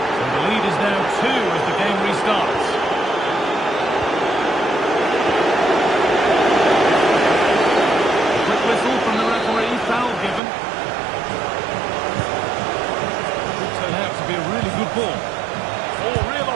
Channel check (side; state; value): left; drops out; at 10.4 s